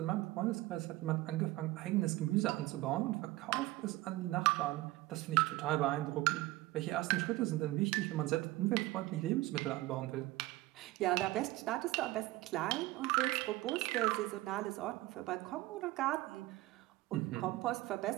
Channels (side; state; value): left; quieter; 18.3 dB